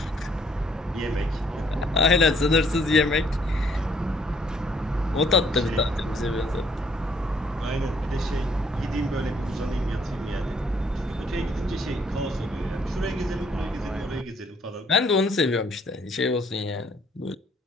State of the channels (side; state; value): both; normal; correlation 0.65